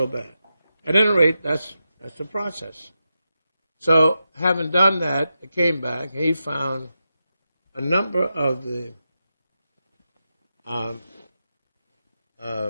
bad. At any rate, that's the process. So, having done that, I came back. He found a number of the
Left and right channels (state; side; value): inverted; both; correlation -0.89